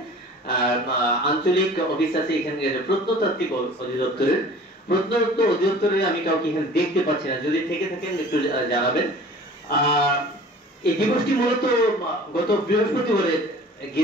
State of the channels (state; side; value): normal; both; correlation 0.45